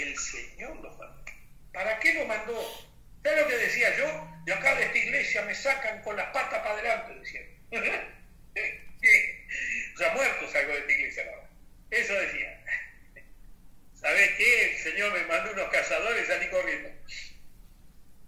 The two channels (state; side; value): identical; both; correlation 1.00